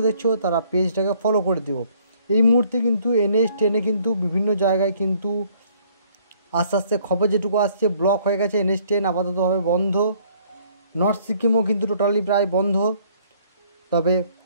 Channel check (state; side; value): inverted; both; correlation -0.62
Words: দেখছো তারা পেজটাকে ফলো করে দিও। এই মুহূর্তে কিন্তু NH10 কিন্তু বিভিন্ন জায়গায় কিন্তু আস্তে আস্তে খবর যেটুকু আসছে ব্লক হয়ে গেছে। NH10 আপাততভাবে বন্ধ। নর্থ সিকিমও কিন্তু টোটালি প্রায় বন্ধ, তবে